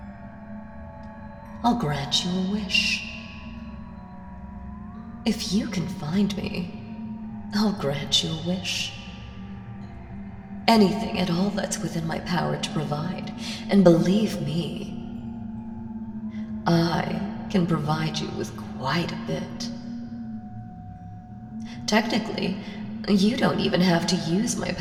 I'll grant you a wish. If you can find me, I'll grant you a wish. Anything at all that's within my power to provide. And believe me, I can provide you with quite a bit. Technically, you don't even have to use my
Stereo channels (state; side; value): identical; both; correlation 1.00